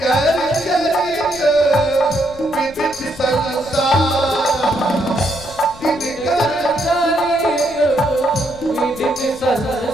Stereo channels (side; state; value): left; noise; rumble, 20 dB below the sound